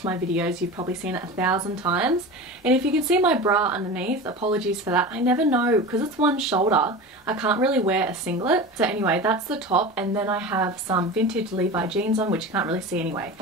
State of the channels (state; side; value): normal; both; correlation 0.30